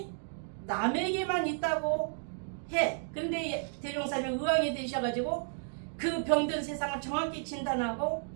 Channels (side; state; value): left; silent; digital silence